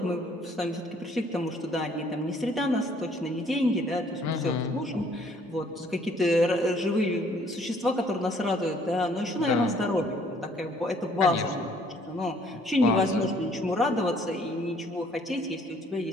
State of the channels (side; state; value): both; normal; correlation 0.61